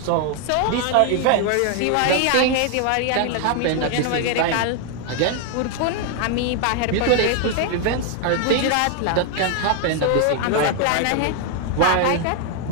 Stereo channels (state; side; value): different; both; correlation 0.00